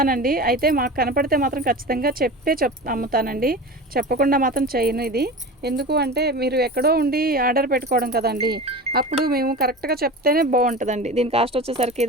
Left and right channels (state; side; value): normal; both; correlation 0.31